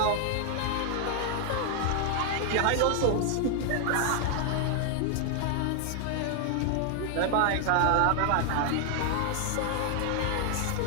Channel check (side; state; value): both; different; correlation 0.00